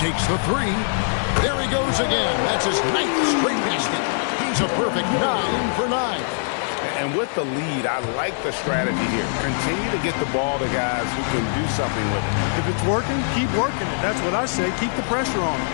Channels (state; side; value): silent; right; digital silence